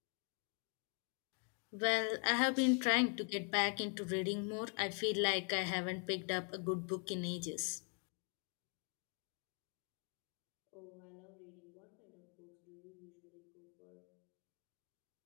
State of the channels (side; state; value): right; quieter; 38.7 dB